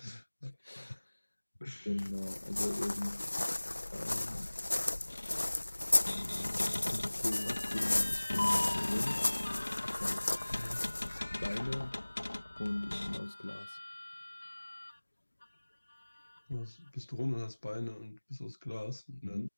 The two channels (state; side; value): inverted; both; correlation -1.00